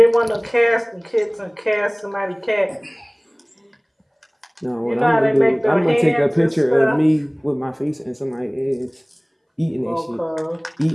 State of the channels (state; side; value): identical; both; correlation 1.00